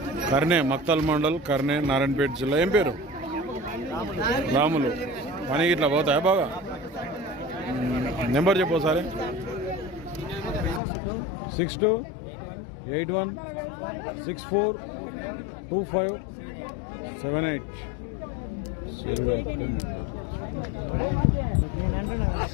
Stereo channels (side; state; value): right; drops out; at 10.8 s